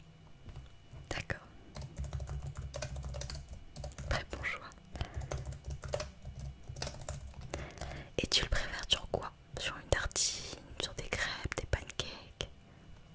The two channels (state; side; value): identical; both; correlation 1.00